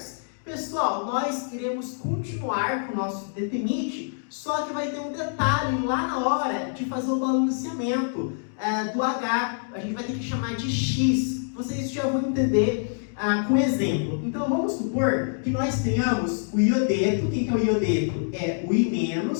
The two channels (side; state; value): right; silent; digital silence